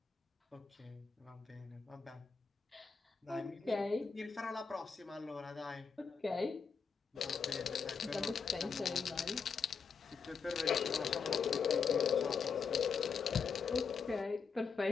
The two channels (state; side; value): quieter; right; 5.7 dB